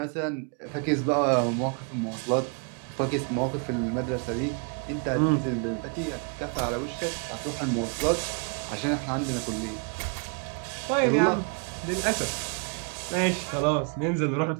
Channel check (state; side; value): quieter; left; 38.3 dB